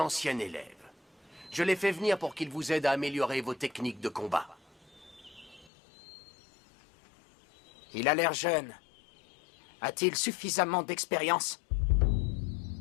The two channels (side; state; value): right; drops out; at 5.7 s